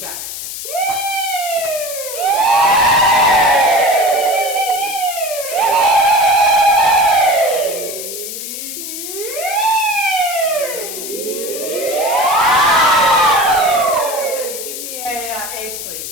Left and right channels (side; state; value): left; noise; hiss, 8 dB below the sound